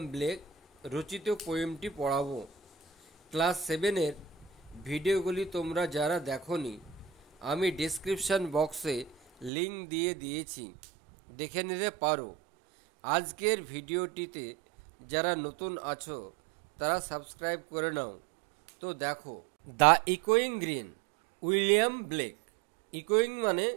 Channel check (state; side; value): drops out; left; at 9.5 s